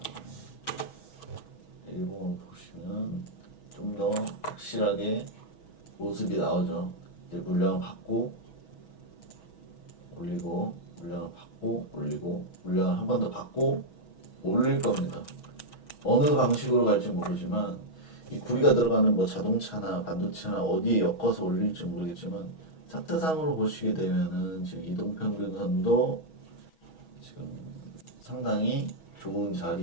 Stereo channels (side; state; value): right; late; 6.2 ms